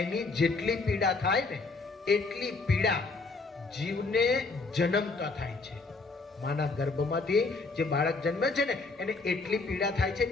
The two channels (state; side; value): quieter; right; 3.8 dB